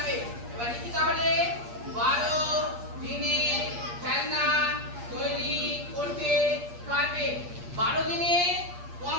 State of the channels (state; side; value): late; left; 8.5 ms